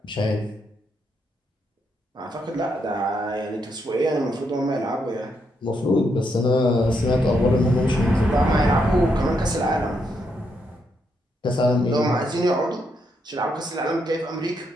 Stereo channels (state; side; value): normal; both; correlation 0.78